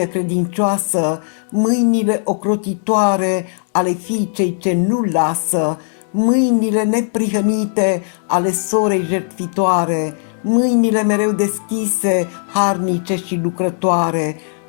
credincioasă, mâinile ocrotitoare ale fiicei ce nu lasă, mâinile neprihănite ale sorei jertfitoare, mâinile mereu deschise, harnice și lucrătoare,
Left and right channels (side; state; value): right; silent; digital silence